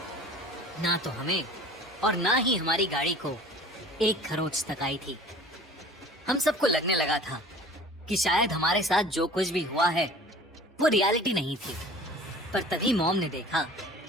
ना तो हमें और ना ही हमारी गाड़ी को एक खरोंच तक आई थी। हम सबको लगने लगा था कि शायद हमारे साथ जो कुछ भी हुआ है वो रियलिटी नहीं थी। पर तभी मॉम ने देखा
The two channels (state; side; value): normal; both; correlation 0.45